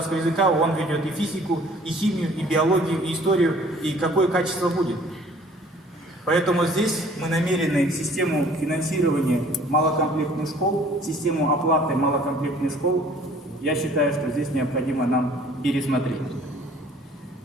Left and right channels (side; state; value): both; normal; correlation 0.54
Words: языка, он ведет и физику, и химию, и биологию, и историю, и какое качество будет. Поэтому здесь мы намерены систему финансирования малокомплектных школ, систему оплаты малокомплектных школ, я считаю, что здесь необходимо нам пересмотреть.